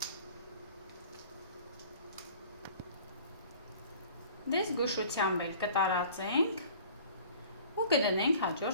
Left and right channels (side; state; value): both; inverted; correlation -0.48